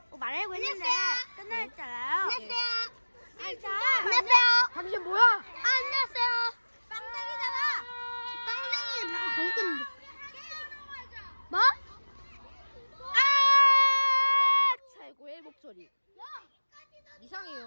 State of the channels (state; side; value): inverted; both; correlation -1.00